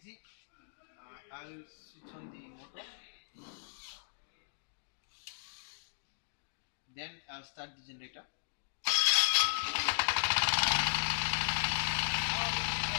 see, I'll switch on the motor, then I'll start the generator.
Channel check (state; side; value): silent; right; digital silence